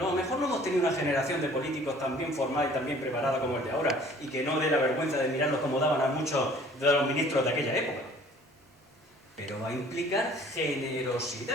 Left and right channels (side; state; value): both; normal; correlation 0.53